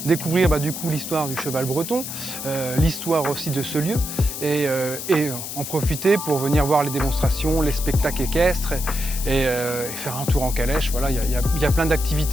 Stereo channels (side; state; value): left; noise; hiss, 7 dB below the sound